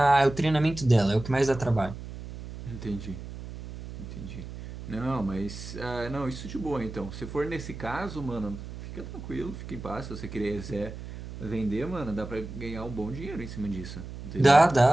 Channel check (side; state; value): right; noise; hum, 11 dB below the sound